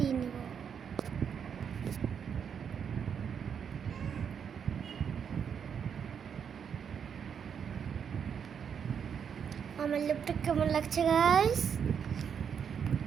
নিব। আমার লিপটা কেমন লাগছে গাইস?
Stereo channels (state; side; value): quieter; left; 7.4 dB